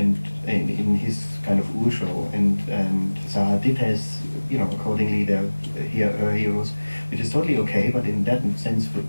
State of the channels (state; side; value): inverted; both; correlation -1.00